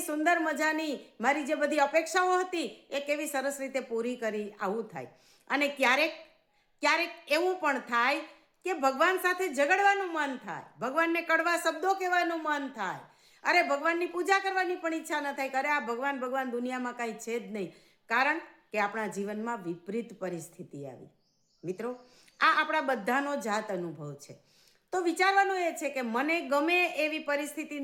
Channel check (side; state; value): both; identical; correlation 1.00